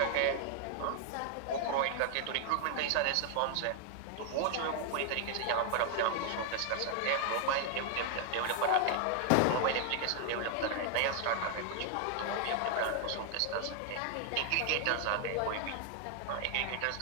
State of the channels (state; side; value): different; both; correlation 0.00